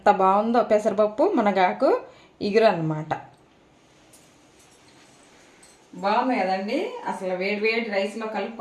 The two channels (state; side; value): identical; both; correlation 1.00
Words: బాగుందో పెసరపప్పు మునగాకు ఇగురు అన్నమాట. బాగుంది కదండి. అసలు వేడి రైస్లో